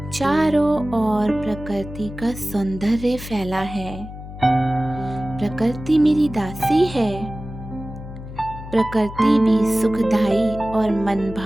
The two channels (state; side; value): noise; left; hum, 12 dB below the sound